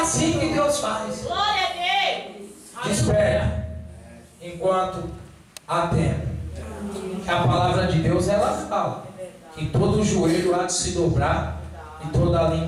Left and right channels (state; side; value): identical; both; correlation 1.00